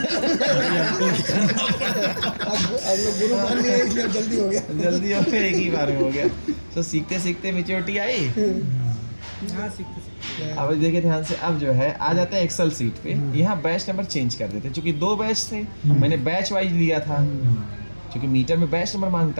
अब लोग गुरु मान लिए इसलिए जल्दी हो गया। जल्दी हो गया, एक ही बार में हो गया। तो सीखते सीखते मेच्योरिटी आई। हाँ सीखते सीखते अब देखिए ध्यान से, अब जो है आ जाते हैं एक्सेल सीट पे। यहाँ बैच नंबर चेंज कर देते हैं, क्योंकि 2 बैच थे, मैंने बैच वाइज लिया था, क्योंकि मीटर में बैच नंबर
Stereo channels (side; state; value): both; inverted; correlation -1.00